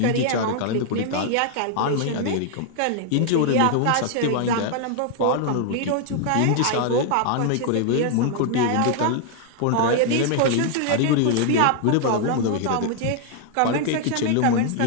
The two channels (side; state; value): both; different; correlation 0.00